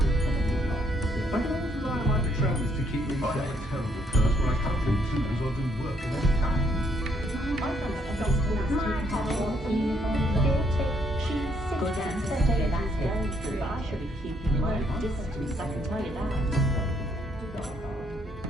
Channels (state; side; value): normal; both; correlation 0.70